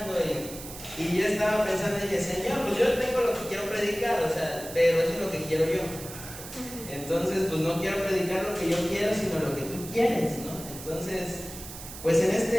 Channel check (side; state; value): right; noise; hiss, 12 dB below the sound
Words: y yo estaba pensando y dije, Señor, pues yo tengo lo que quiero predicar, o sea, pero eso es lo que quiero yo. Entonces, pues no quiero predicar lo que yo quiero, sino lo que tú quieres, ¿no? Entonces, pues en